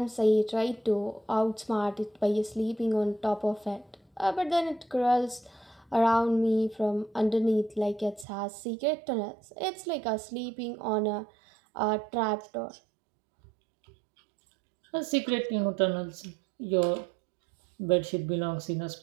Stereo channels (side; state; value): left; drops out; at 8.2 s